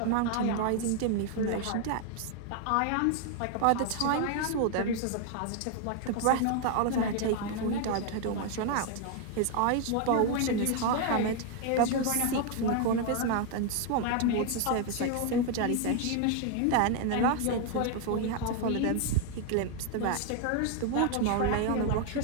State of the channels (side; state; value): both; different; correlation 0.00